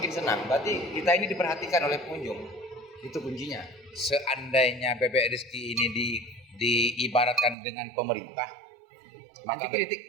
senang. Berarti kita ini diperhatikan oleh pengunjung. Itu kuncinya. Seandainya Bebek Rizky ini diibaratkan dengan pemerintah, anti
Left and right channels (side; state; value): left; drops out; at 7.6 s